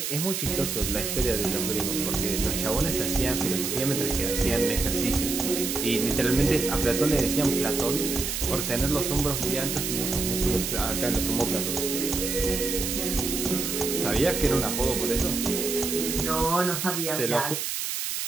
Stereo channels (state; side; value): noise; right; hiss, 2 dB below the sound